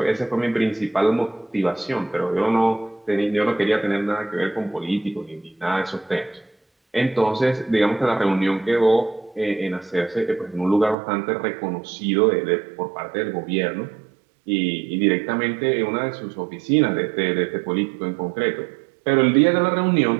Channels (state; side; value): drops out; left; at 11.0 s